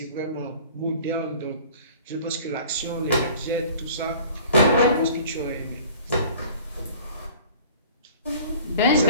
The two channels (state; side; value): inverted; both; correlation -0.47